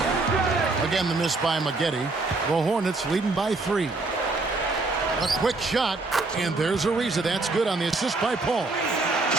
Again, the miss by Maggette. The Hornets leading by 3. A quick shot, and there's Ariza. That's good on the assist by Paul.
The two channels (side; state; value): left; quieter; 3.4 dB